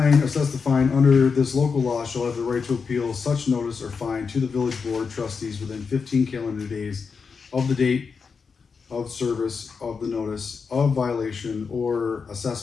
under this local law shall have the right to appeal such notice or fine to the village board trustees within 15 calendar days of the date of service of the notice of violation or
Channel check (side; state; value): right; quieter; 5.4 dB